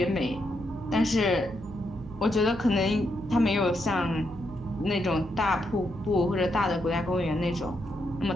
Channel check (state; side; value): noise; right; hum, 18 dB below the sound